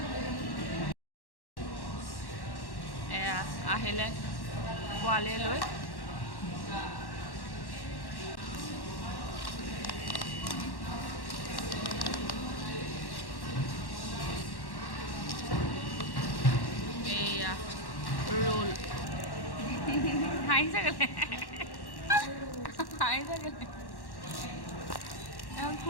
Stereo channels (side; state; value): right; late; 1.1 ms